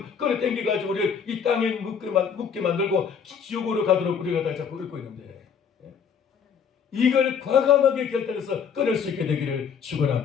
끌어 당겨가지고 우리를 이 땅에 묻게 만들고 지옥으로 가도록 우리가 다 자꾸 끌고 있는데, 이걸 과감하게 결단해서 끊을 수 있게 되기를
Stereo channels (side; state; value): right; quieter; 7.0 dB